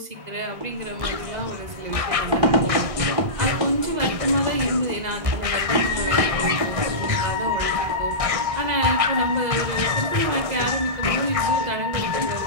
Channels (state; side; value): late; left; 1.6 ms